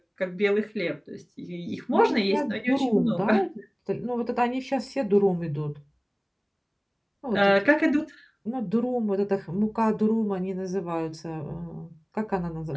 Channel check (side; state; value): both; identical; correlation 1.00